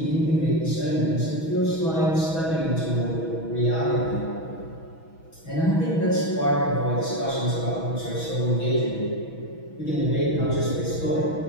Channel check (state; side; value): late; right; 6.2 ms